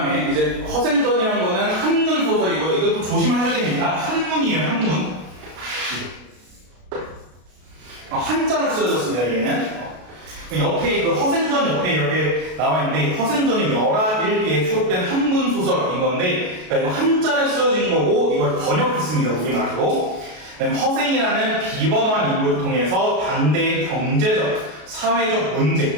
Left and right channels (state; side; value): late; left; 33 ms